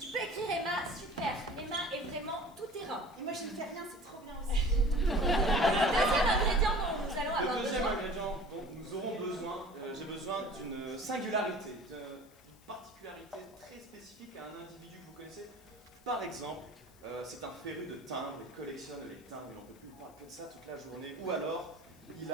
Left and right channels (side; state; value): left; noise; hiss, 27 dB below the sound